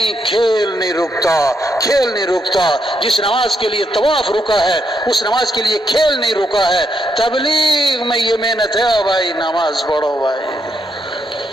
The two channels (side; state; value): both; normal; correlation 0.78